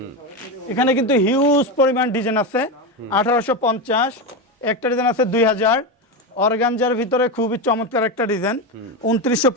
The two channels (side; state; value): both; normal; correlation 0.15